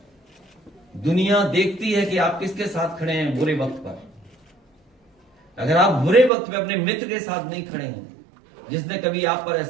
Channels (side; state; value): left; drops out; at 6.3 s